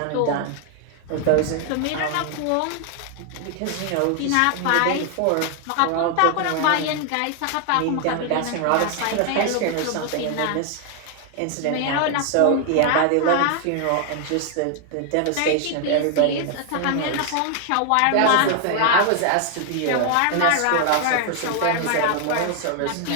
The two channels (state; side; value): different; both; correlation 0.00